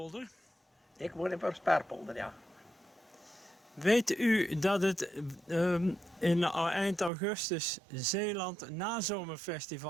Ik woon in Prosperpolder, ja. Weet u dat het in eind augustus Zeeland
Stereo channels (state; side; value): drops out; left; at 7.1 s